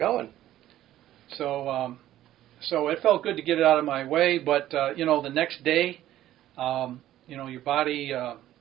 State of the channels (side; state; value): left; quieter; 13.3 dB